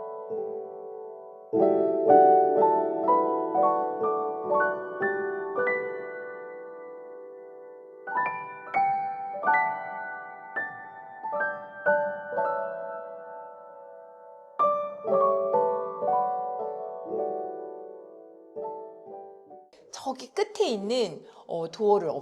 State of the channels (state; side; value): identical; both; correlation 1.00